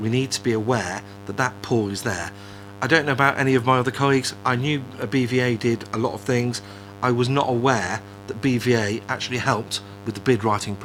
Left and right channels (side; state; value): both; identical; correlation 1.00